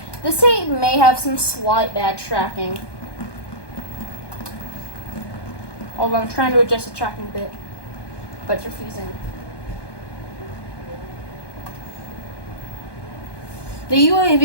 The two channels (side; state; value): right; late; 1.2 ms